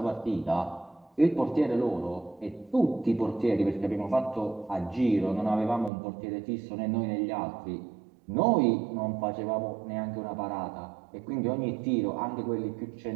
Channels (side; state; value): left; drops out; at 5.9 s